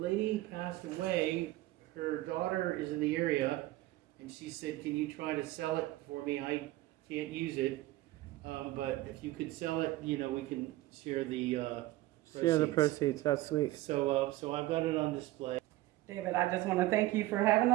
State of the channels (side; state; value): left; quieter; 17.3 dB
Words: passed away. Her daughter is in the area, and she said, can you try to sell it for me? I can't use it, but if you could sell it, we can share the proceeds. That's sweet. So I've got it on display. David, I just want to thank you for having